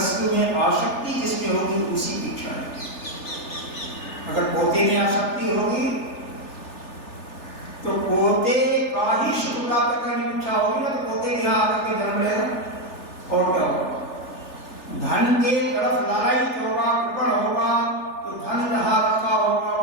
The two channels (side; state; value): right; late; 3.4 ms